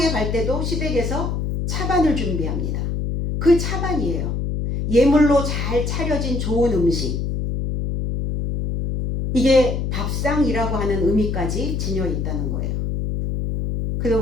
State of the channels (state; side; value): noise; left; hum, 1 dB below the sound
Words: 갈 때도 시댁에서 차반을 준비합니다. 그 차반이에요. 예물로 잘 차려진 좋은 음식. 이게 밥상이라고 하는 의미까지 지녀 있다는 거예요. 그래서